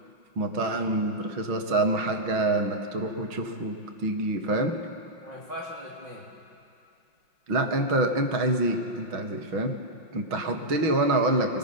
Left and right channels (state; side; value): late; left; 5.6 ms